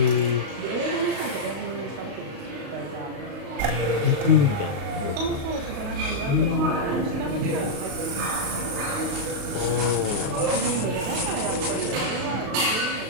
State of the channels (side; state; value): left; late; 35 ms